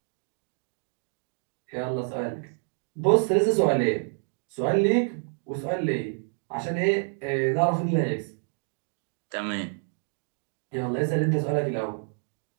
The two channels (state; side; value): silent; left; 57 dB below the other